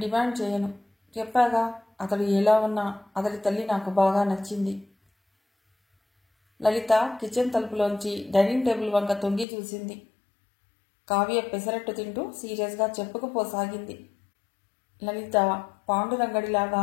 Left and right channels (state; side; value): drops out; right; at 9.5 s